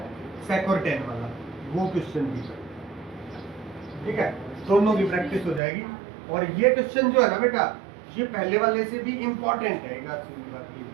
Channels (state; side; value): drops out; left; at 5.6 s